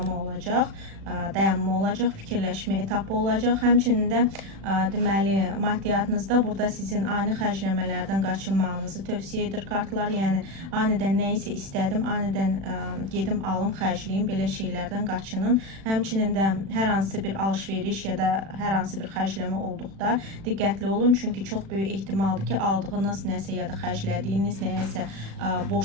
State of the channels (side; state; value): left; late; 36 ms